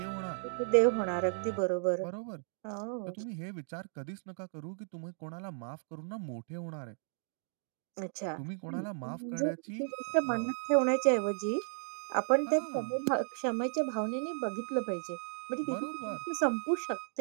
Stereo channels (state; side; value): silent; left; digital silence